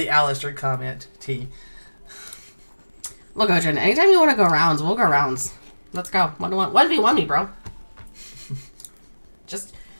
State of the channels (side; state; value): both; inverted; correlation -1.00